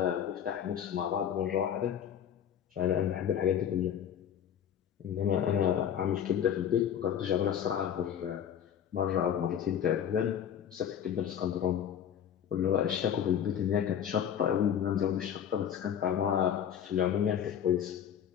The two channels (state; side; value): quieter; right; 9.1 dB